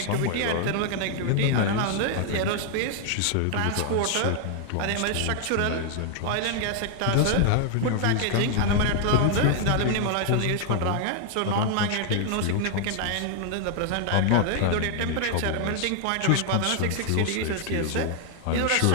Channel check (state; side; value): different; both; correlation 0.00